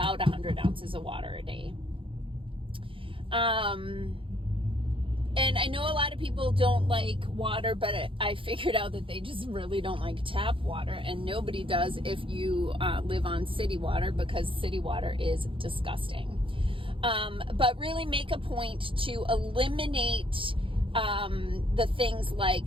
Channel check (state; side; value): late; left; 0.25 ms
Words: 100 ounces of water a day. And I know a lot of people don't like water, but I figured out that they just really don't like tap water, and nobody does if you live on city water, because city water is disgusting. But really make a point to eliminate the things like